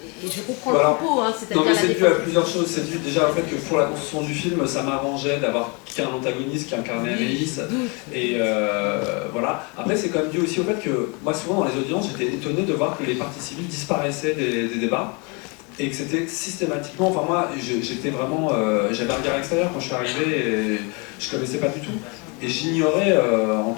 et je comprends le propos, hein, c'est-à-dire non, mais c'est dû à plusieurs choses. C'est dû déjà au fait que pour la construction du film, ça m'arrangeait d'avoir qu'un antagoniste qui incarnait Amélis. Et voilà. Après, c'est quand même dû aussi au fait que moi, souvent dans les audiences, j'étais étonné de voir que les parties civiles disparaissaient des débats. Et que c'était systématiquement. Enfin, moi, j'étais vraiment. J'avais un regard extérieur quand je suis arrivé et je connaissais pas du tout. Et j'ignorais, en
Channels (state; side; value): quieter; right; 31.3 dB